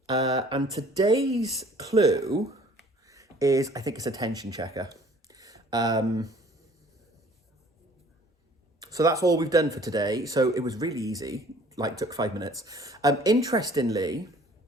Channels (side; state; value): both; normal; correlation 0.54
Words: And today's clue is, I think it's a tension checker. So that's all we've done for today. So it was really easy, like took 5 minutes. Interestingly,